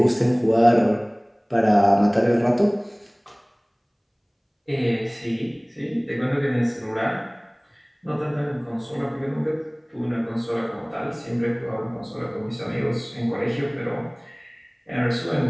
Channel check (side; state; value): both; identical; correlation 1.00